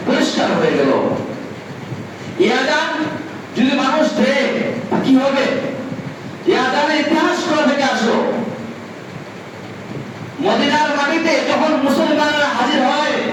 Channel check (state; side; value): identical; both; correlation 1.00